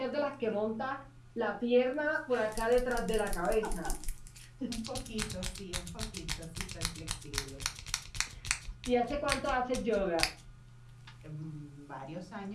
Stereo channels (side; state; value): both; identical; correlation 1.00